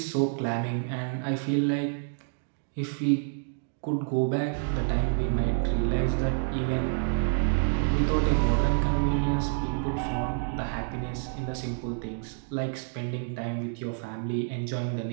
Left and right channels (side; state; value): left; silent; digital silence